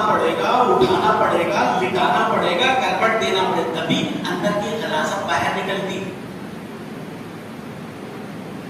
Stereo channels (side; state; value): both; identical; correlation 1.00